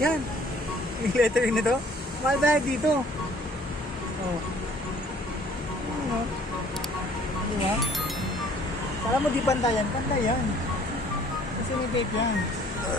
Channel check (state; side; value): normal; both; correlation 0.56